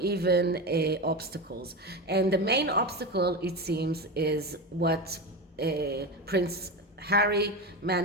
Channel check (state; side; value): normal; both; correlation 0.20